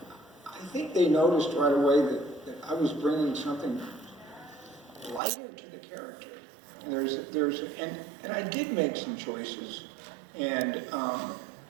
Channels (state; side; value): drops out; left; at 5.2 s